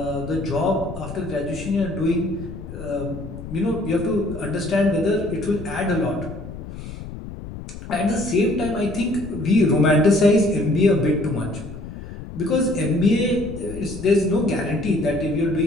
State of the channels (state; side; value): noise; left; rumble, 11 dB below the sound